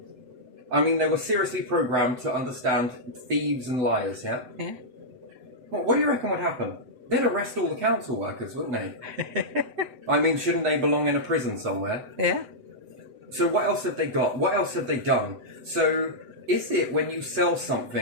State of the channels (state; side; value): late; left; 7.9 ms